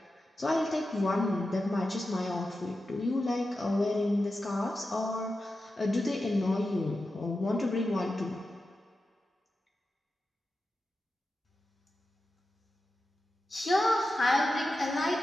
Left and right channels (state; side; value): normal; both; correlation 0.91